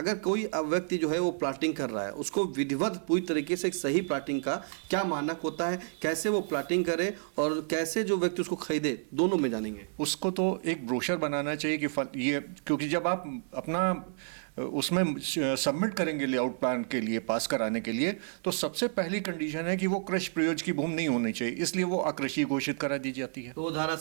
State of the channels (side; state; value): left; silent; 58 dB below the other